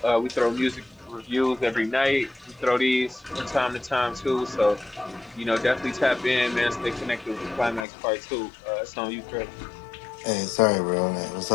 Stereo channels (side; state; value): right; drops out; at 7.9 s